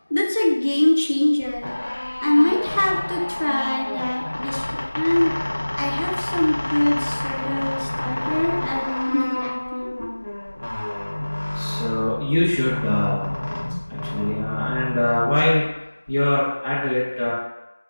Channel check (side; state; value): both; inverted; correlation -1.00